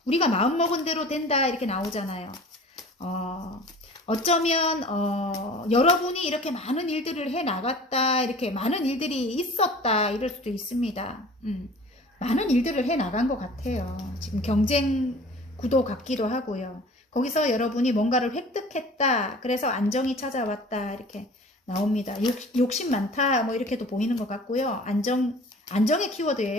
우리가 마음먹은 대로 된다 이렇게 나오잖아요. 어쩌면 여러분이 이렇게 많은 일들을 해 나갔다, 이렇게 많은 일들이 있었다 이럴 수도 있습니다. 많은 일들을 해 나간 것 같아요. 지금 경쟁 구도 같기도 하고요. 거기서 여러분이 뭔가를 획득했다, 그래서 안정이 찾아왔다 이렇게 나옵니다. 욕심 많다 뭐 이렇게도 보이는 것 같고요. 안정의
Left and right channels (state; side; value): normal; both; correlation 0.45